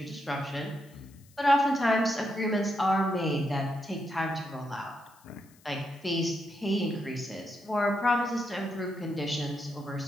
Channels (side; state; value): left; noise; hiss, 28 dB below the sound